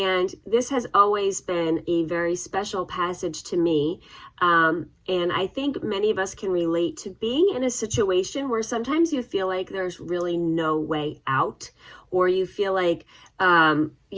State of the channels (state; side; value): identical; both; correlation 1.00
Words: this has always been a very special passage to me. And I think many of us can relate to being in a situation where sometimes you feel like there's really no way out, or you feel like,